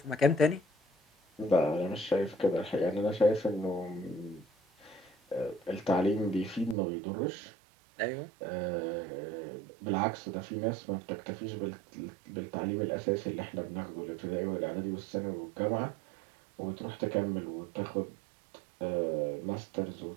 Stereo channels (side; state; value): left; drops out; at 6.8 s